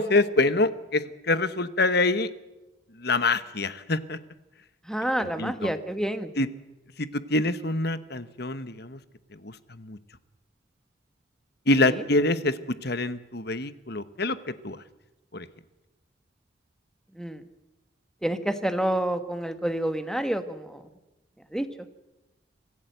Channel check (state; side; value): normal; both; correlation 0.36